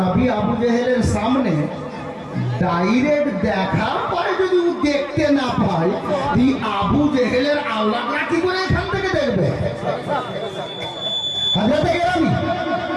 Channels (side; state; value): both; identical; correlation 1.00